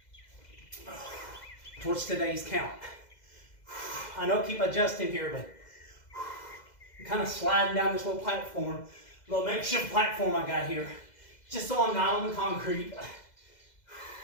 Towards today's count. I know keep adjusting here, but I'm kind of sliding down this little platform, little makeshift platform I got here, just so I'm not on the concrete.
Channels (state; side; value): late; right; 2.0 ms